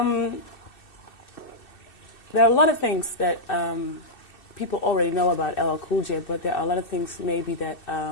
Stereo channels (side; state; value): right; late; 2.6 ms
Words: are a lot of things that people already know about LL Cool J, but there are a lot of things maybe that,